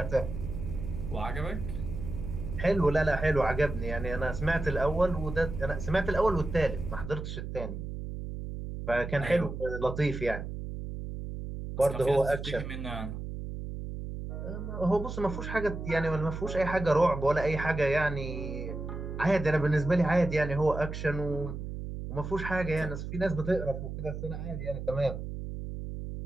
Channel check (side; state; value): right; noise; hum, 7 dB below the sound